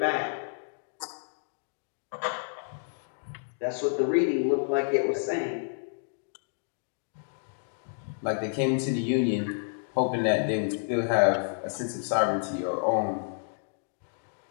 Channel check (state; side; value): silent; right; digital silence